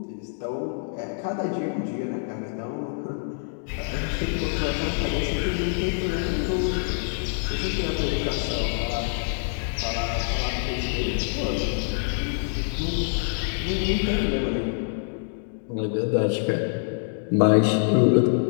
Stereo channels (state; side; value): silent; right; digital silence